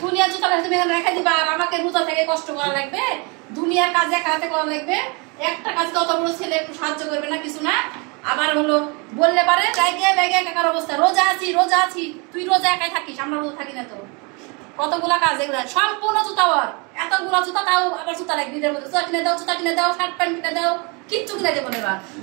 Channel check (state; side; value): quieter; left; 30.7 dB